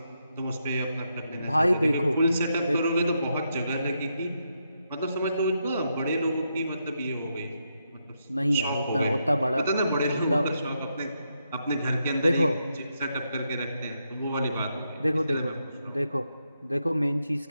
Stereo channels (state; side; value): inverted; both; correlation -0.82